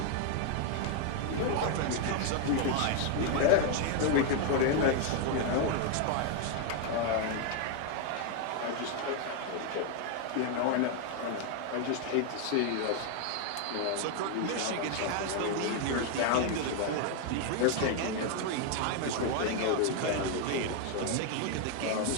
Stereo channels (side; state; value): both; different; correlation 0.00